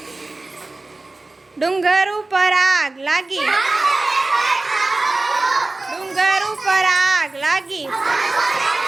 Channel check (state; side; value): quieter; left; 3.1 dB